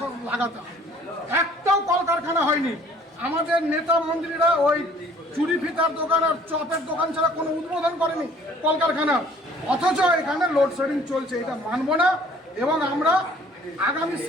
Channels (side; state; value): both; normal; correlation 0.55